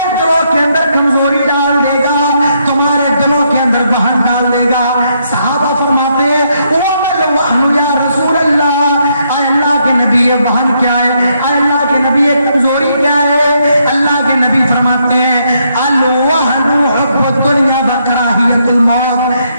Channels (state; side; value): inverted; both; correlation -0.75